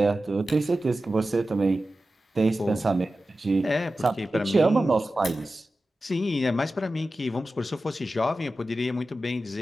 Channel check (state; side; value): normal; both; correlation 0.94